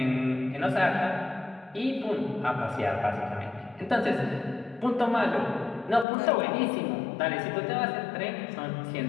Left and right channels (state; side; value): drops out; right; at 6.1 s